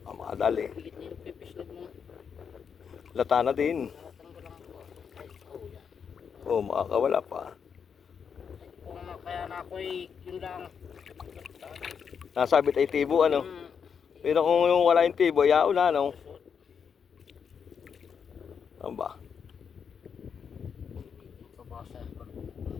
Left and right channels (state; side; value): quieter; right; 6.8 dB